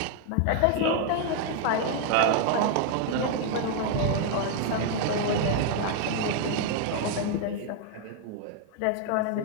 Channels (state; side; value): different; both; correlation 0.00